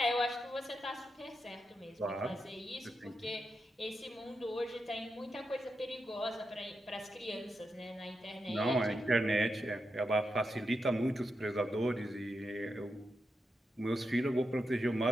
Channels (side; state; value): both; normal; correlation 0.86